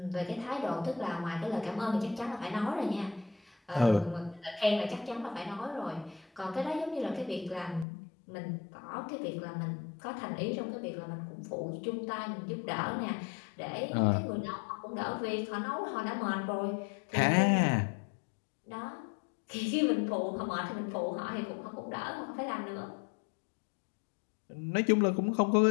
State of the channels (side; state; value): right; drops out; at 7.9 s